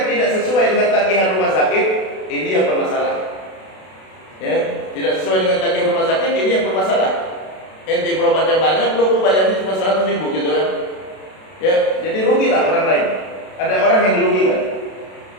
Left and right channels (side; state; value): right; late; 32 ms